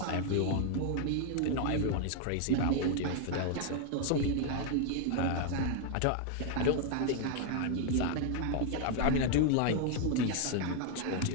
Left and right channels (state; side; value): different; both; correlation 0.00